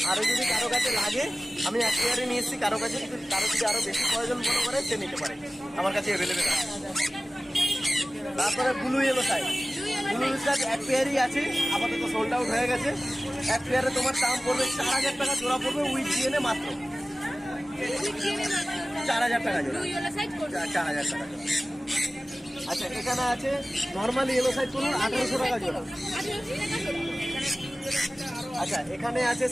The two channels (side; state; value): both; normal; correlation 0.97